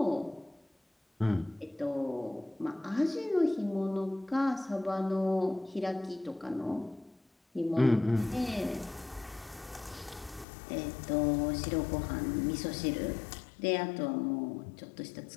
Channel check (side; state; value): right; drops out; at 10.5 s